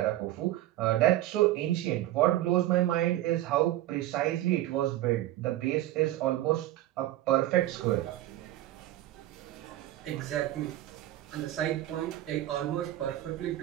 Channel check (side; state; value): left; quieter; 14.7 dB